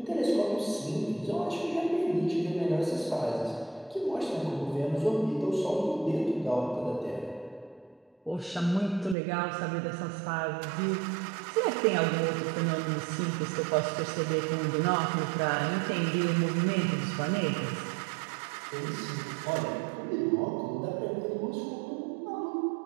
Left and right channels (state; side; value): drops out; left; at 9.2 s